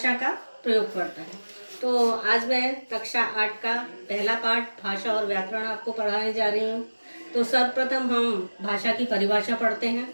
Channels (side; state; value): both; inverted; correlation -1.00